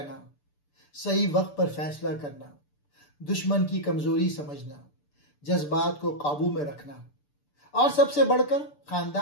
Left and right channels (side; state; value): right; late; 6.8 ms